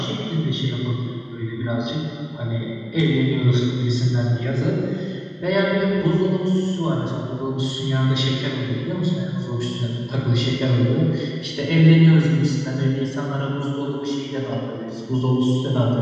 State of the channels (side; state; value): both; identical; correlation 1.00